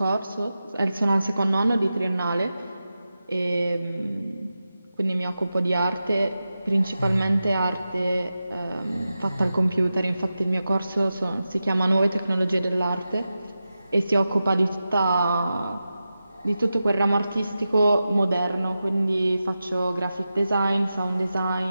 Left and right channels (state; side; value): inverted; both; correlation -0.92